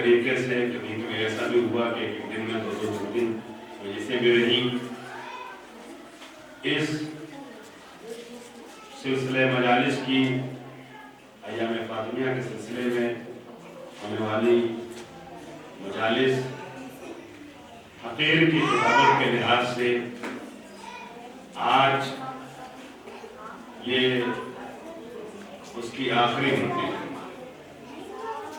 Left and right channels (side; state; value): both; identical; correlation 1.00